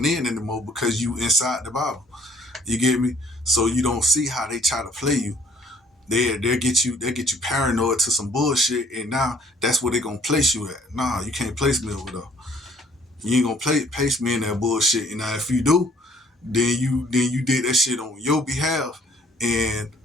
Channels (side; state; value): both; normal; correlation 0.60